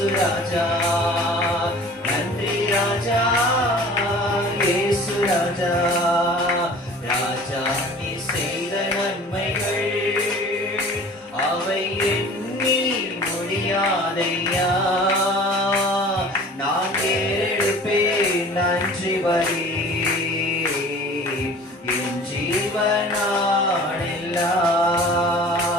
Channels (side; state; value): both; normal; correlation 0.45